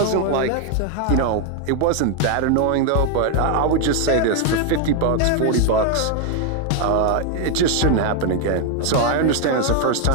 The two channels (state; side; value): different; both; correlation 0.01